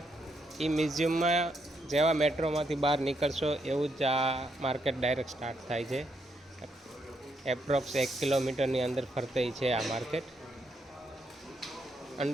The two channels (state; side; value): normal; both; correlation 0.78